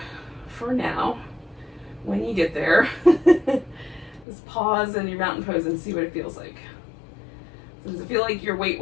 for now, when you get there, just pause in your mountain pose and see what it feels like. So does it feel like your weight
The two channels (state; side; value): drops out; right; at 4.2 s